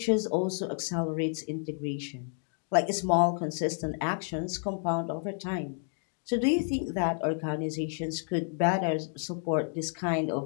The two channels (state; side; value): silent; right; 56 dB below the other